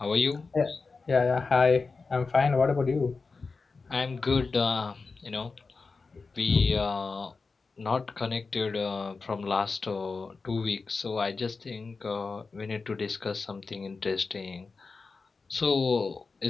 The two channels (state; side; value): quieter; right; 4.3 dB